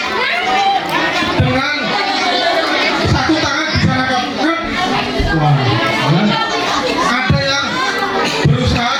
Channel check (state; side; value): identical; both; correlation 1.00